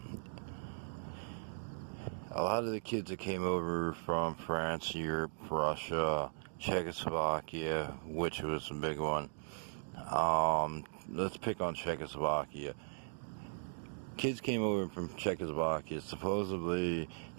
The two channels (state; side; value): silent; left; digital silence